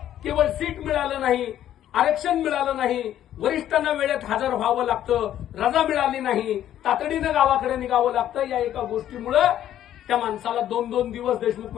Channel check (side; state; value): right; quieter; 11.5 dB